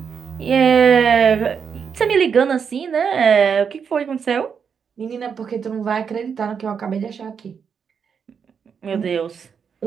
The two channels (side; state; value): left; quieter; 6.7 dB